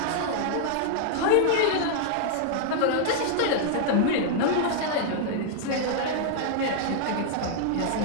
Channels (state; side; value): different; both; correlation -0.01